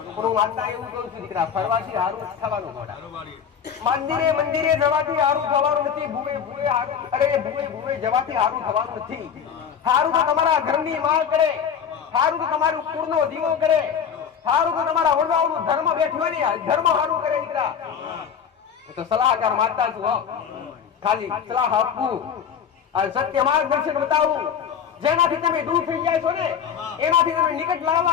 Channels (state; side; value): quieter; right; 7.7 dB